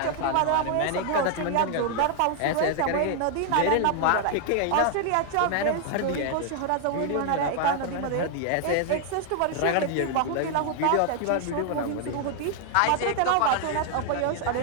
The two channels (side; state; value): both; different; correlation 0.00